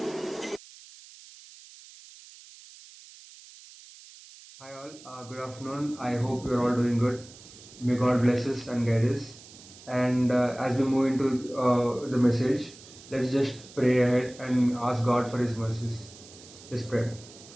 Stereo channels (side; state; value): right; noise; hiss, 20 dB below the sound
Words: Hi all, good afternoon. I hope you're all doing good. May God bless us and guide us. And as we move into the message, let's just pray ahead and ask God for His mercies. Let's pray.